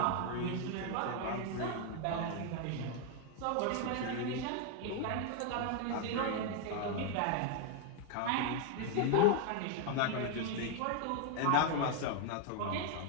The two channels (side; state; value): both; different; correlation 0.01